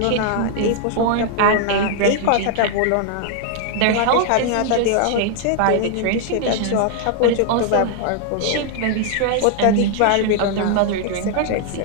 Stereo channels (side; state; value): both; different; correlation 0.00